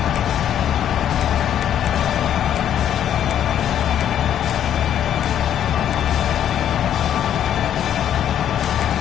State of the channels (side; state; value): right; quieter; 10.2 dB